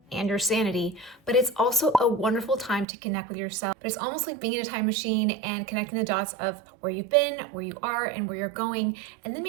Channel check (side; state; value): left; drops out; at 2.9 s